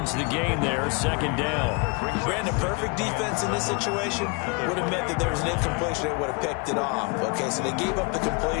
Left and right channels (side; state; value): right; quieter; 31.3 dB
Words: the gain there, 2nd down. Brandon, perfect defense in this situation would have meant that there was an incompletion that would have picked it off. Okay, so they gave up the